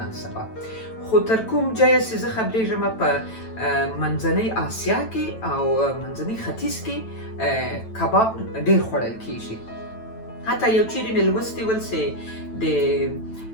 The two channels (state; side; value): late; right; 9.0 ms